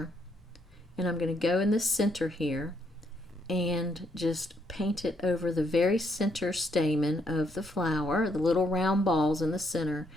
And I'm going to go in the center here and just paint it over the very center stamen of the flower, the little round balls in the center,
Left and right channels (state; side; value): normal; both; correlation 0.73